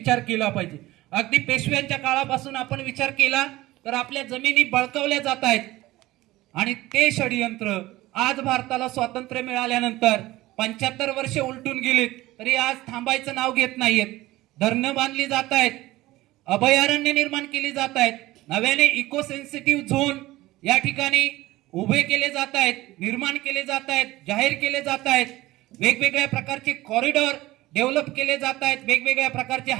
केला पाहिजे. अगदी पेशव्यांच्या काळापासून आपण विचार केला तर आपल्या जमिनी बळकावल्या जात आहेत आणि ते षडयंत्र आज भारताला स्वातंत्र्य मिळाल्यानंतर 75 वर्षे उलटून गेलीत तरी आज थांबायचं नाव घेत नाहीयेत. धरणं बांधली जात आहेत, अभयारण्य निर्माण केली जात आहेत, नव्याने इको सेन्सिटिव्ह झोन या ठिकाणी उभे केले जात आहेत, निर्माण केले जात आहेत, जाहीर केले जात आहेत, वेगवेगळ्या प्रकारचे कॉरिडॉर डेव्हलप केले जात आहेत, वेगवेगळ्या प्रकारचे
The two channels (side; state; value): left; quieter; 17.7 dB